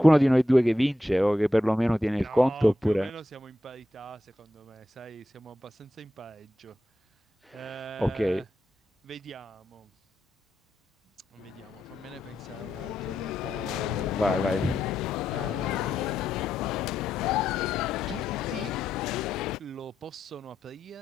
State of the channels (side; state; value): both; normal; correlation 0.86